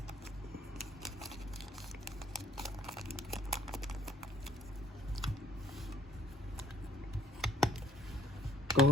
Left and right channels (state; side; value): normal; both; correlation 0.59